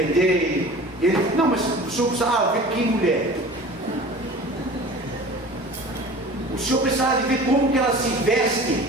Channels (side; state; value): both; normal; correlation 0.40